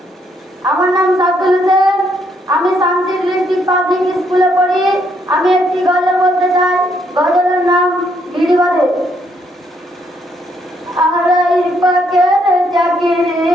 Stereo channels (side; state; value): both; normal; correlation 0.72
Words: আমার নাম সাদুল হোসেন। আমি শামসির ডিস্ট্রিক্ট পাবলিক স্কুলে পড়ি। আমি একটি গজল বলতে চাই। গজলের নাম গিরি বাঁধে। আড়াই পাকের চাকরি